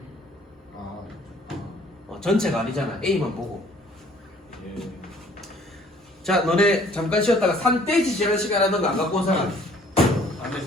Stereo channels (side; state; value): both; normal; correlation 0.57